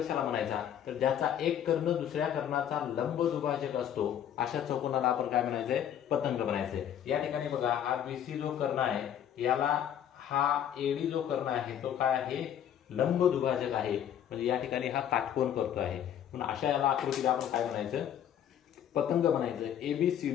म्हणायचा? तर ज्याचा एक कर्ण दुसऱ्या कर्णाचा लंब दुभाजक असतो अशा चौकोनाला आपण काय म्हणायचंय? पतंग म्हणायचंय. या ठिकाणी बघा, हा BC जो कर्ण आहे याला हा AD जो कर्ण आहे तो काय आहे? लंब दुभाजक आहे. म्हणजे या ठिकाणी हा काटकोन करतो आहे. म्हणून अशा याला आकृतीला आपण काय म्हणायचं? पतंग म्हणायचं.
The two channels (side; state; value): right; quieter; 9.9 dB